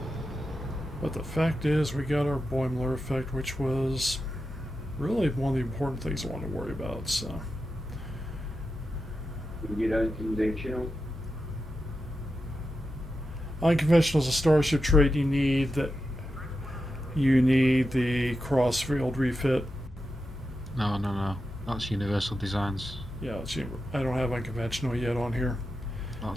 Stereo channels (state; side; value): normal; both; correlation 0.89